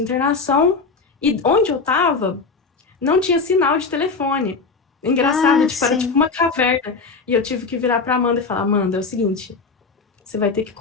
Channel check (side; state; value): right; quieter; 4.5 dB